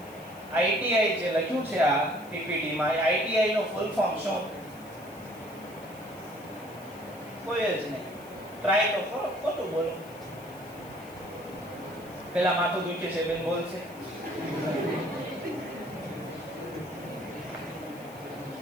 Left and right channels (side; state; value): left; noise; hiss, 22 dB below the sound